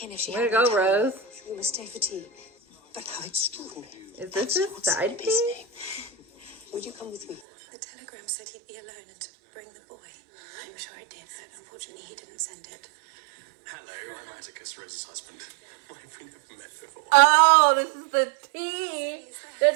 in if she Way had to any go, time. Rose. We must stay for tea. But how extraordinary. Is this his side piece? Would you come with me? The telegram said he'd be alone and to bring the boy. I'm sure it did, but unfortunately he didn't send it. Hello, I'm Atticus, Rose's husband. We've never met before. Oh, this is the tea that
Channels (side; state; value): left; drops out; at 7.4 s